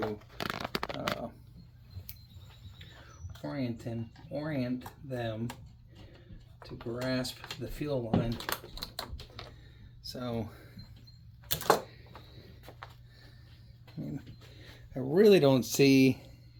orient them to grasp the fuel line. So I mean, I really don't see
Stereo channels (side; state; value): both; identical; correlation 1.00